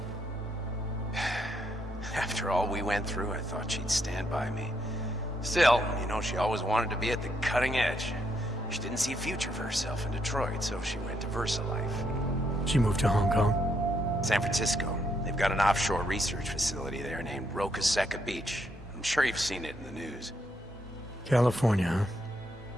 After all we went through, I thought she'd stand by me. Still, you know, she always wanted to be at the cutting edge. She didn't see a future for herself in Detroit, so she went to VersaLife. She moved to Hong Kong? San Francisco. They've got an offshore research facility there named Rocaseca Beach. I'm sure you've seen it in the news. California,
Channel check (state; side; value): normal; both; correlation 0.76